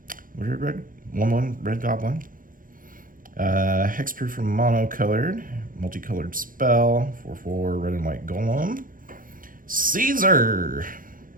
red 1/1 red goblin. Hexproof from monocolored, multicolored spell, 4/4 red and white golem. Caesar.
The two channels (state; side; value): late; left; 0.40 ms